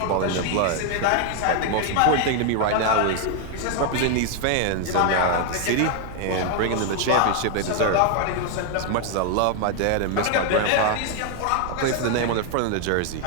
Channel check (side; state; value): both; different; correlation 0.00